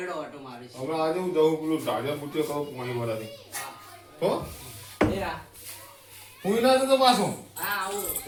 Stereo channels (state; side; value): identical; both; correlation 1.00